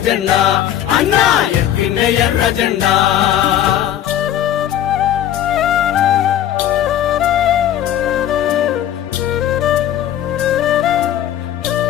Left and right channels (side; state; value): right; quieter; 11.1 dB